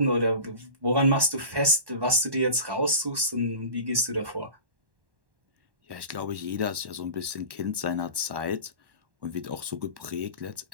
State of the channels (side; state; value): left; late; 1.1 ms